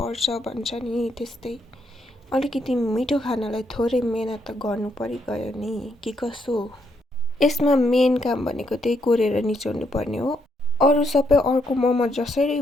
भन्छ नि, त्यस्तै अलिकति मिठो खानलाई थोरै मेहनत त गर्नु परिगयो नि, कि कसो। यसमा मेन काम भनेको त्यही कोरेर निचोड्नु पर्ने हो। अरू सबै अर्को मोमो जसरी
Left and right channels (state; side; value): normal; both; correlation 0.76